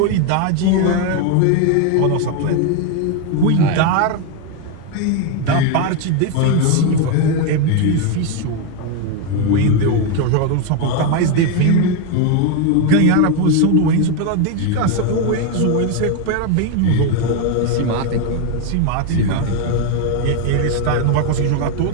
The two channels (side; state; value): both; different; correlation 0.02